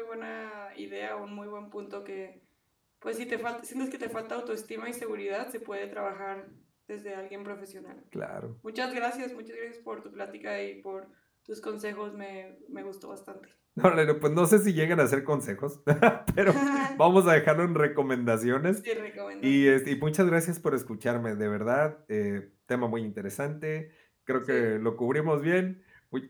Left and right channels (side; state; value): both; identical; correlation 1.00